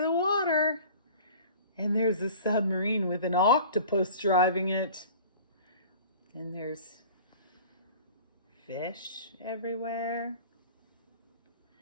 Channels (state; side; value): inverted; both; correlation -0.44